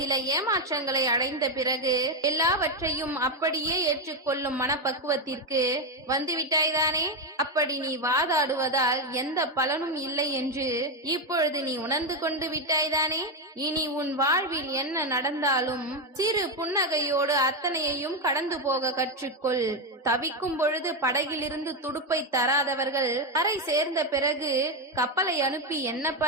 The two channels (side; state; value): both; normal; correlation 0.08